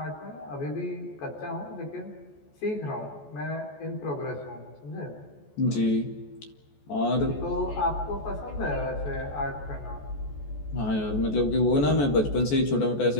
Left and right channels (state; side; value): late; right; 14 ms